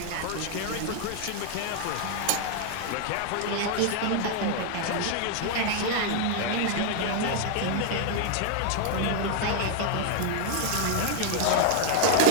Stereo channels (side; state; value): both; different; correlation 0.00